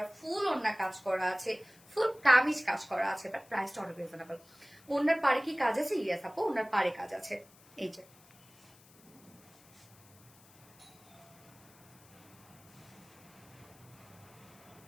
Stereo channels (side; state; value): left; noise; hiss, 26 dB below the sound